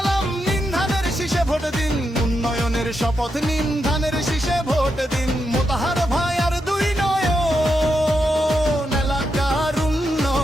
নিন, ধানের শীষে ভোট দিন। উন্নয়নের শপথ নিন, ধানের শীষে ভোট দিন। মোতাহার ভাই আর 2 নয়ন, এলাকার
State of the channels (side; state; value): both; normal; correlation 0.84